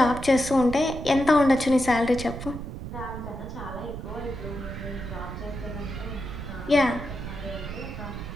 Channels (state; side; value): noise; right; rumble, 8 dB below the sound